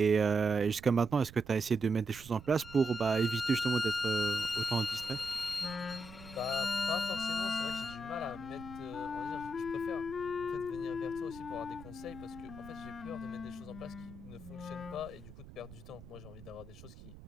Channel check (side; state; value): right; noise; rumble, 17 dB below the sound